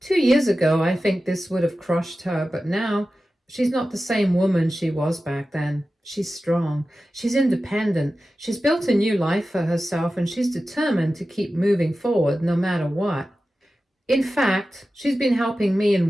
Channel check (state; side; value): normal; both; correlation 0.94